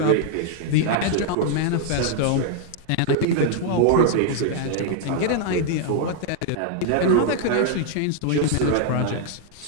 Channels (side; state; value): both; different; correlation 0.00